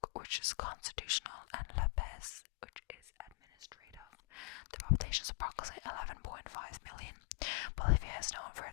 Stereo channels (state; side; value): quieter; right; 33.9 dB